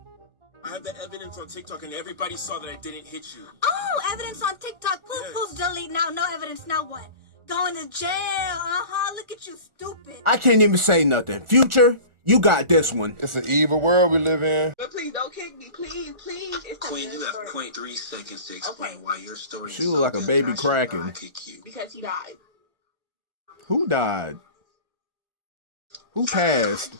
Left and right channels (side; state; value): left; late; 1.4 ms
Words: I have the evidence on TikTok, and everybody saw that I didn't hit you. Oh, evidence on TikTok. Poof, delete now. No evidence. Now what? Going to jail. Look at you, stupid. I can't even say nothing. Future, you got this one. It's an evil world we live in. But please don't kick me, please. It's Queen, you have 0.3 seconds to explain why your story She look like a baby cracking. Because he died. Who died? Who passed?